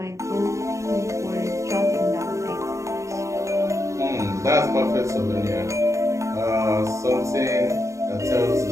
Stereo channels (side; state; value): left; late; 0.15 ms